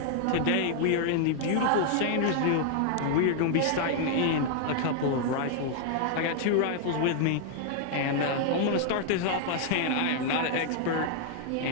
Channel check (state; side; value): different; both; correlation 0.00